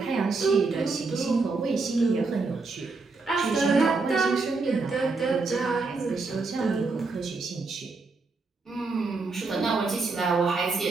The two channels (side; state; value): left; quieter; 4.0 dB